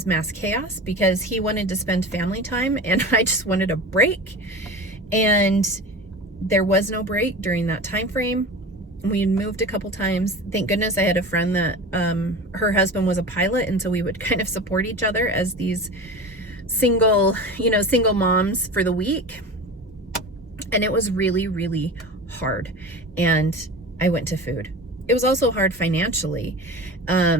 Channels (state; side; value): normal; both; correlation 0.32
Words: mass chaos because he wanted to spend family time and I just wanted a break. And there was no break during that time frame. We had moved a couple times. Thank goodness I had a friend that her husband was a pilot, and so we would kind of support each other as these single moms for the week. And it was really, really hard. And I went to food. It was also hard financially,